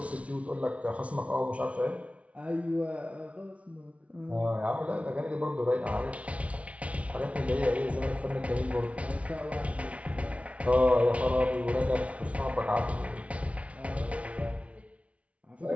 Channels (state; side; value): late; left; 0.064 ms